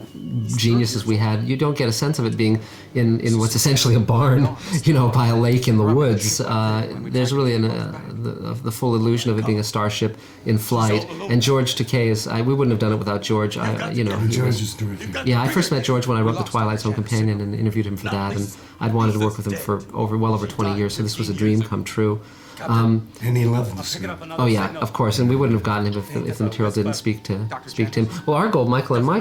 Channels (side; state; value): both; identical; correlation 1.00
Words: geniuses we had, you don't get a sense of it being in what's essentially a barn, by a lake in the woods. There's really the full illusion of it being a starship in flight. And George Takei we wouldn't have done it without George. George is terrific. Yeah, I first met George when I wrote The Twilight Zone Companion and interviewed him for that, and I'd wanted to work with him for well over 20 years, so this was a dream come true. And he loved the script. Oh yeah, of course, and we wouldn't have gotten him if the material didn't speak to him. Well, our goal, Michael and my